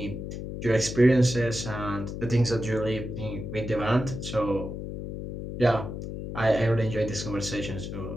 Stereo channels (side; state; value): left; noise; hum, 7 dB below the sound